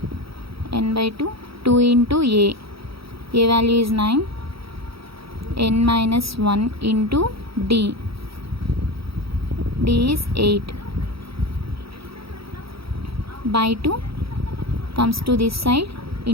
n by 2, 2 into a value is 9, n minus 1 into d is 8, by 2 comes to this side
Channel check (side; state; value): left; late; 0.76 ms